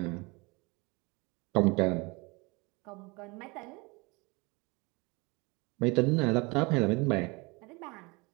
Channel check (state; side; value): quieter; left; 26.6 dB